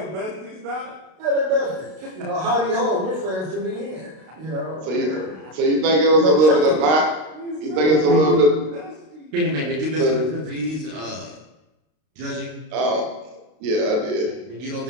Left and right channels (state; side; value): late; left; 32 ms